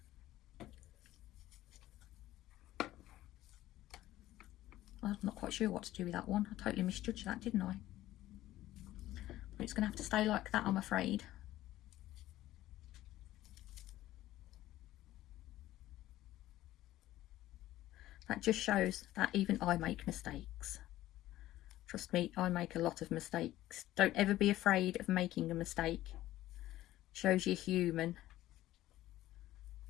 I'm not quite sure what to do with that one. I totally misjudged that, didn't I? But it's going to have to stay like that, I'm afraid. That just shows that even I make mistakes. Trust me, I make a lot of mistakes. Don't ever be afraid of making a mistake. Shows you're human.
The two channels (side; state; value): right; quieter; 15.0 dB